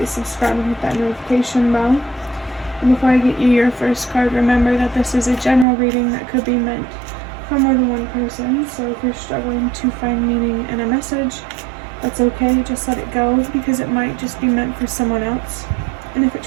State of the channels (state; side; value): drops out; left; at 5.7 s